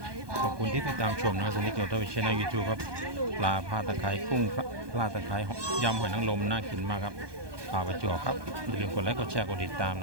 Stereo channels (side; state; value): left; late; 1.2 ms